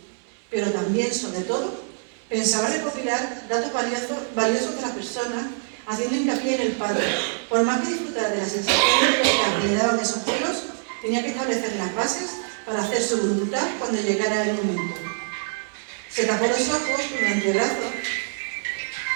Pero también, sobre todo, pensaba recopilar datos valiosos de la persona, haciendo hincapié en el padre. Por más que disfrutara de las sensaciones que le daban esos celos, tenía que establecer las bases para hacer su voluntad cuando llegara el momento. Se tapó los ojos con el antebrazo,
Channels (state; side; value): silent; left; digital silence